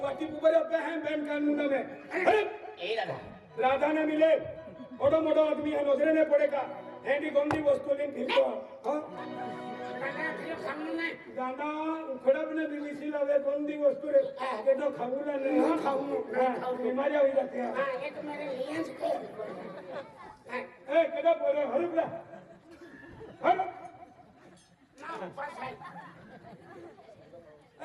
वाटी ऊपर होते हैं बैंक कानून में राधा ने मिले मोठो मोठो आदमी है नजरे ने पड़ेगा हेंडी गोंदी वस्तू लेन फिरतो गाना उखडप ने बीबीसी लावे गोंदी वस्तू रे ते तो खाऊला नहीं खाऊ बीमारी होई जाते हैं ये तो मेरे लिए ए केदा बोले हरुपला हर ना पास है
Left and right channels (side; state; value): both; identical; correlation 1.00